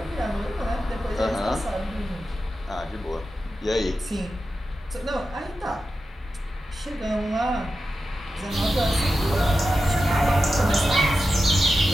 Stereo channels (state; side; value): normal; both; correlation 0.91